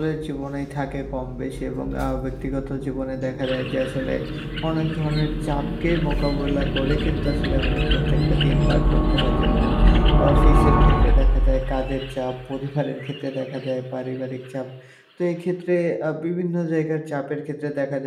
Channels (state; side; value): identical; both; correlation 1.00